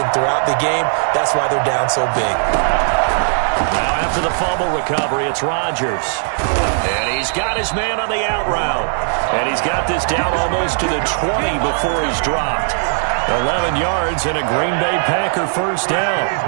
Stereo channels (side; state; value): left; silent; 58 dB below the other